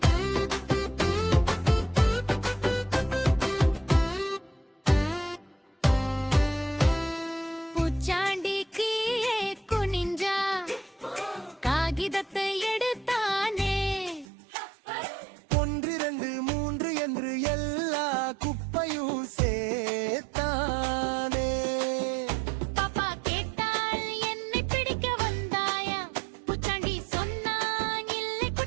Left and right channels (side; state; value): left; drops out; at 14.2 s